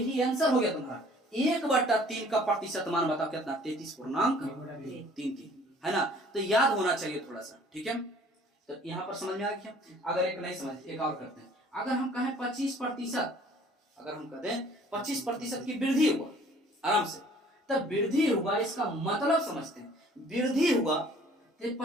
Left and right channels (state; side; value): normal; both; correlation 0.54